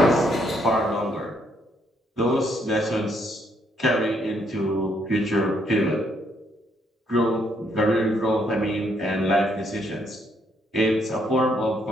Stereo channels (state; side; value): normal; both; correlation 0.72